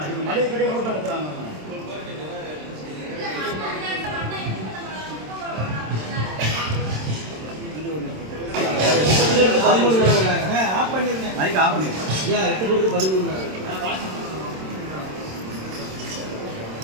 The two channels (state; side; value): late; left; 27 ms